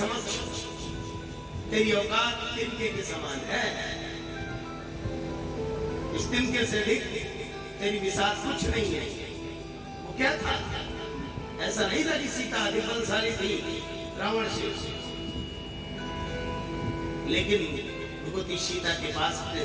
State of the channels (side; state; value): both; identical; correlation 1.00